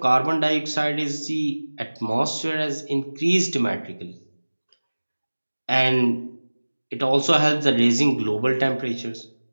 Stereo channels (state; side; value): inverted; both; correlation -1.00